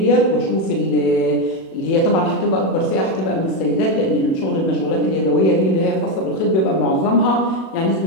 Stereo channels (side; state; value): right; late; 37 ms